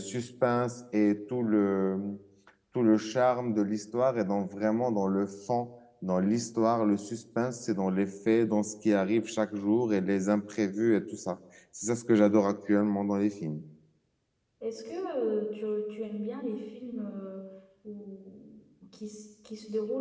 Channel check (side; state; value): both; identical; correlation 1.00